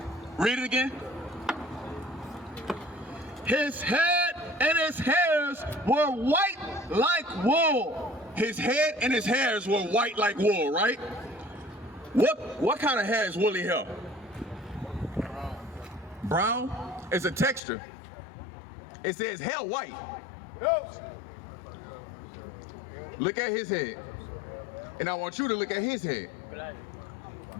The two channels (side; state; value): right; drops out; at 17.6 s